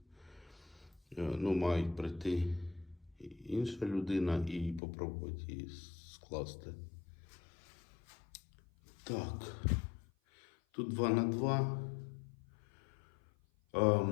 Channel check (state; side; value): drops out; right; at 4.8 s